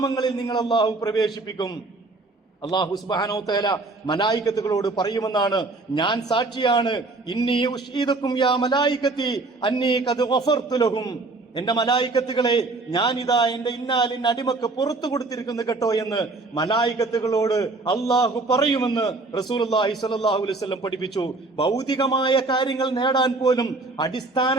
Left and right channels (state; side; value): quieter; left; 3.4 dB